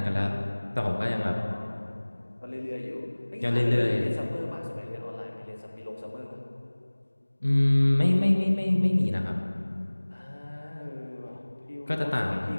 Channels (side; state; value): both; inverted; correlation -1.00